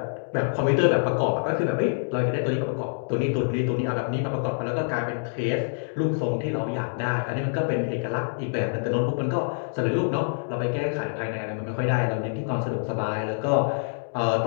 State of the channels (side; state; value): right; silent; 61 dB below the other